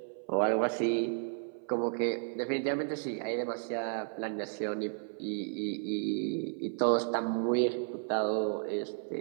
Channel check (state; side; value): silent; left; 56 dB below the other